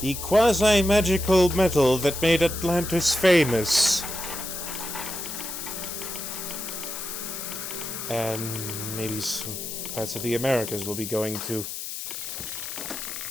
the quasi-magical metal that made Atlantis famous. And maybe some parts of the Americas will be going to.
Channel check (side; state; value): left; noise; hiss, 7 dB below the sound